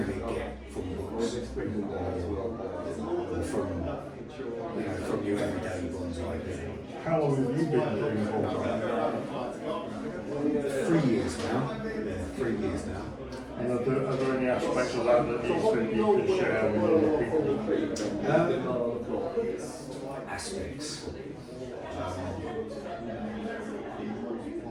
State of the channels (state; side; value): identical; both; correlation 1.00